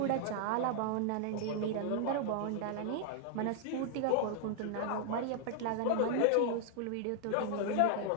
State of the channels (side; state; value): both; different; correlation 0.00